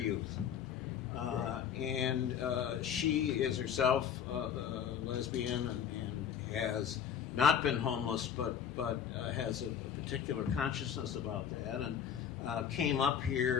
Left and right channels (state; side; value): quieter; right; 8.4 dB